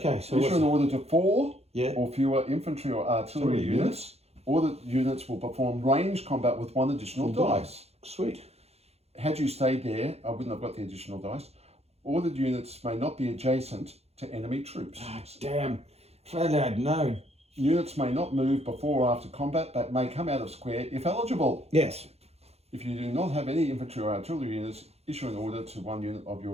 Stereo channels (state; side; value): late; left; 0.30 ms